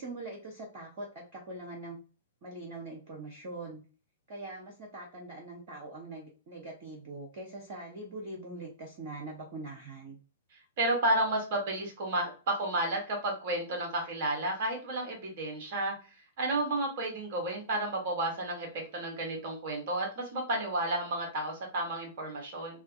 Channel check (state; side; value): inverted; both; correlation -0.35